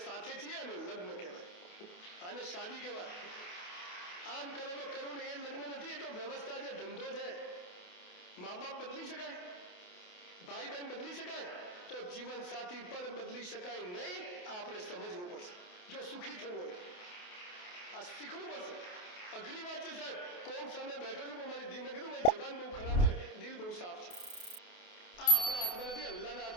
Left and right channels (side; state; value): right; late; 28 ms